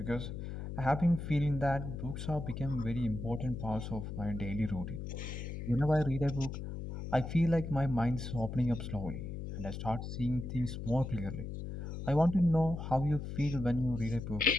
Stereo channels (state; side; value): noise; left; hum, 6 dB below the sound